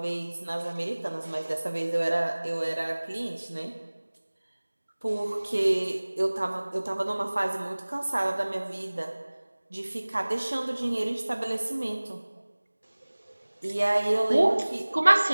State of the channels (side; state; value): both; inverted; correlation -1.00